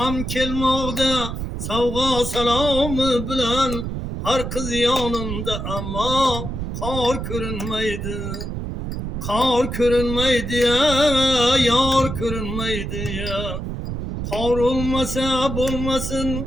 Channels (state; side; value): noise; right; rumble, 5 dB below the sound